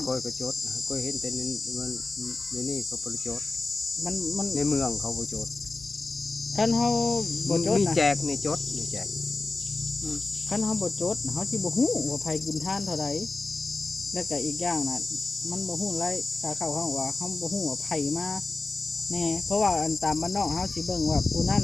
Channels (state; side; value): quieter; right; 3.6 dB